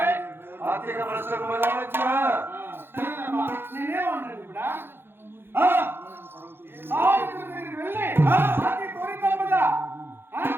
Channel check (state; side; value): late; left; 0.10 ms